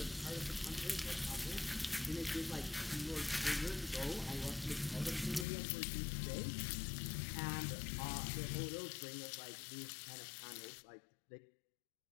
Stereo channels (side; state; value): right; drops out; at 5.5 s